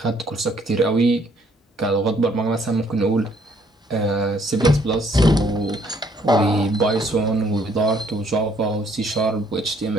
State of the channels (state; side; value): normal; both; correlation 0.65